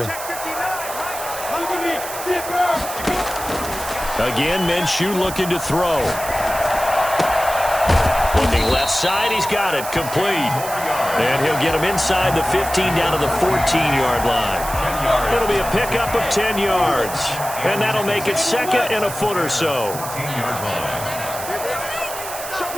Again, Minshew looking to throw. Looking left side, he's got it. Complete. And he'll get him inside the 15 down to the 14-yard line. It'll be a pickup of 10 yards. And that'll make it second and a foot or so.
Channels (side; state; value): right; noise; hiss, 9 dB below the sound